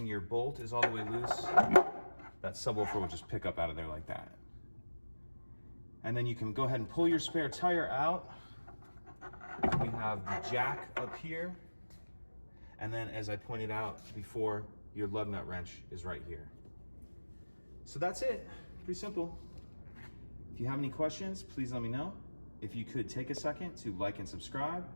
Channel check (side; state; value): both; inverted; correlation -1.00